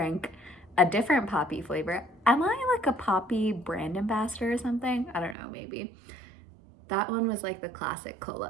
a different poppy flavor. Am I like a poppy brand ambassador or something? I don't know, maybe. That one was like the classic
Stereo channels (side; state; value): left; drops out; at 5.4 s